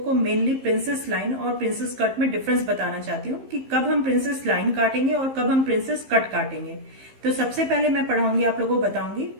मेनली प्रिंसेस लाइन और प्रिंसेस कट में डिफरेंस बताना चाहती हूँ कि कब हम प्रिंसेस लाइन काटेंगे और कब हम प्रिंसेस कट काटेंगे। तो सबसे पहले मैं पढ़ाऊंगी आप लोगों को बताऊंगी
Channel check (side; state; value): left; late; 15 ms